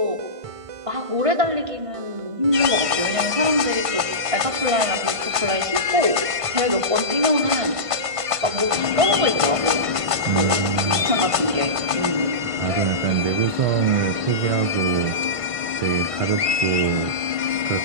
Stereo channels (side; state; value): left; late; 1.5 ms